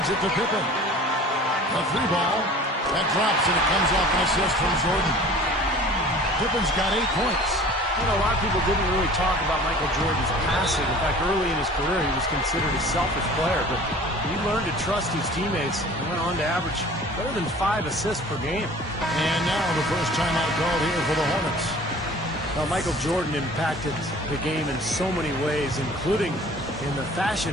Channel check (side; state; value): both; normal; correlation 0.45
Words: it to Pippen. A free ball. That drops, and it comes off an assist from Jordan. Pippen's got 8 points. You know, a lot of people didn't really talk about Michael Jordan's passing. In fact, early in his career, he was considered a selfish player, but he learned to trust his teammates and went on to average better than 5 assists per game. And now the first timeout called here for the Hornets. Well, Michael Jordan impacted the game in so many ways, including in the